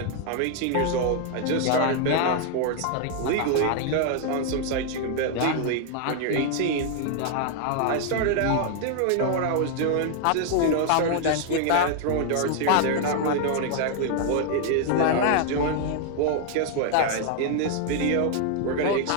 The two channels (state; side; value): different; both; correlation 0.00